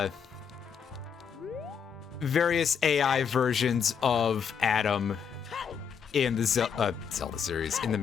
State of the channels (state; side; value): quieter; right; 7.1 dB